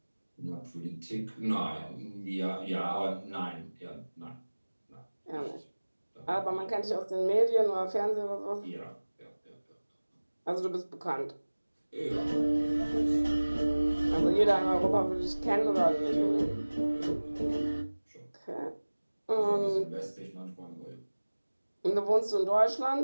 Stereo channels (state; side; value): inverted; both; correlation -1.00